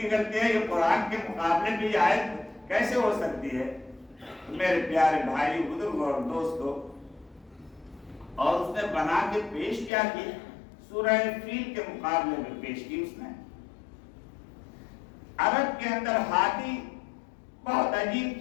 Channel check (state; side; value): drops out; right; at 9.9 s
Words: غلطی ہے، یہ قرآن کے مقابلے میں یہ آیت کیسے ہو سکتی ہے؟ میرے پیارے بھائی، بزرگ اور دوستو، اور اس نے بنا کے پیش کیا کی؟ سورہ فیل کے مقابلے میں پیش کی اس نے۔ عرب کے اندر ہاتھی بہت عجیب